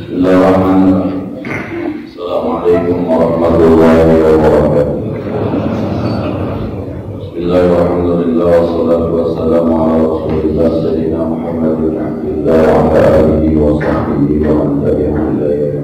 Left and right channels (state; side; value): identical; both; correlation 1.00